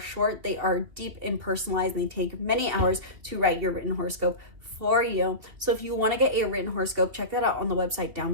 they are deep and personalized and they take many hours to write your written horoscope for you. So if you want to get a written horoscope, check that out on the website down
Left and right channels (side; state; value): left; late; 3.0 ms